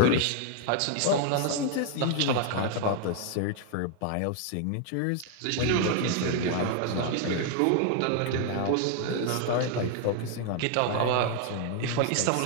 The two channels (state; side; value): different; both; correlation 0.00